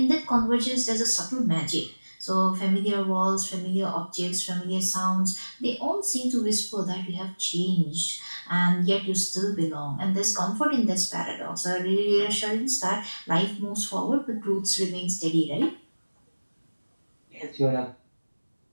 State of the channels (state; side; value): inverted; both; correlation -1.00